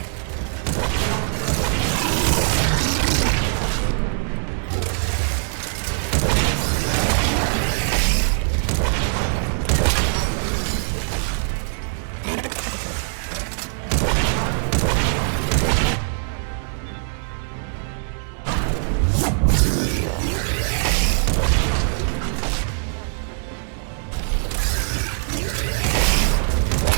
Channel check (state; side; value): silent; left; digital silence